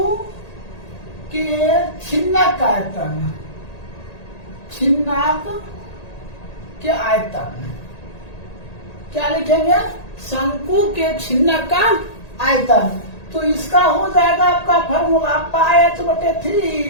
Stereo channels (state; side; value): late; right; 1.8 ms